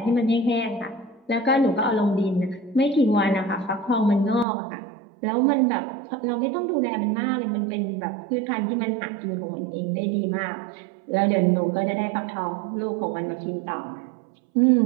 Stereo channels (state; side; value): drops out; left; at 4.5 s